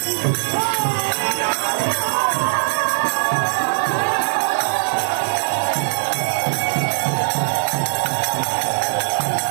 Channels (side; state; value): left; silent; 66 dB below the other